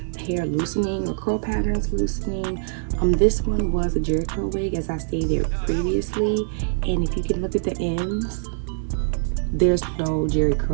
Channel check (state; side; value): silent; left; digital silence